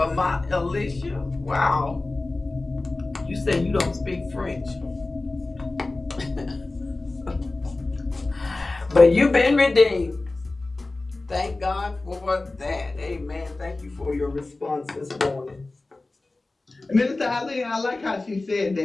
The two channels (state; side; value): quieter; right; 3.2 dB